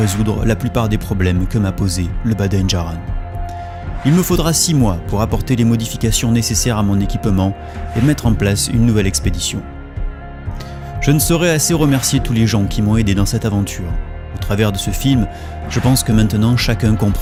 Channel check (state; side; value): identical; both; correlation 1.00